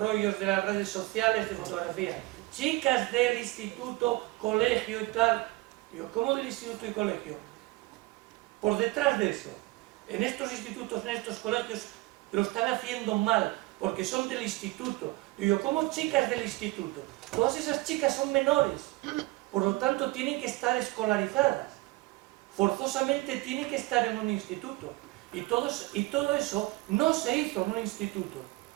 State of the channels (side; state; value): left; quieter; 20.9 dB